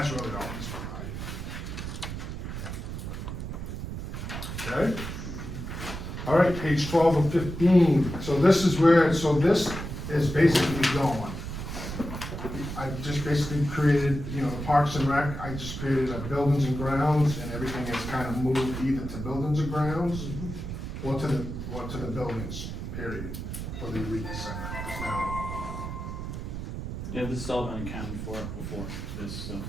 really all he's providing. Okay? All right, page 12 of 15, so this is this is basically going. I just basically created, you know, the Parks and Rec, I just created a buildings and grounds, and everything is kind of moved either to buildings and grounds, or to the buildings, period, for the Eureka Center. It's now, Yeah, this has all been accounted for before this, so,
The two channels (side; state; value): right; noise; rumble, 6 dB below the sound